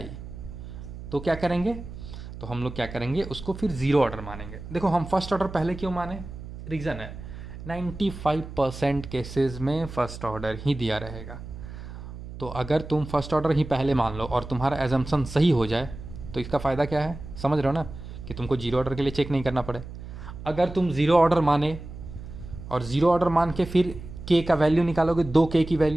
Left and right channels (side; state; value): right; noise; hum, 12 dB below the sound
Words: तो क्या करेंगे, तो हम लोग क्या करेंगे, उसको फिर ज़ीरो ऑर्डर मानेंगे। देखो हम फर्स्ट ऑर्डर पहले क्यों माने, रीज़न है 95% केसेस में फर्स्ट ऑर्डर ही दिया रहेगा। तो अगर तुम फर्स्ट ऑर्डर ही पहले मान लो और तुम्हारा एजम्पशन सही हो जाए तो इसका फ़ायदा क्या है, समझ रहे हो ना, कि तुमको जीरो ऑर्डर के लिए चेक नहीं करना पड़े। अगर तुम ज़ीरो ऑर्डर माने और ज़ीरो ऑर्डर मान के फिर K का वैल्यू निकालोगे, दो K की